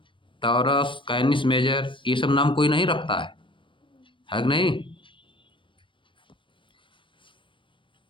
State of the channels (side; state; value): right; late; 0.24 ms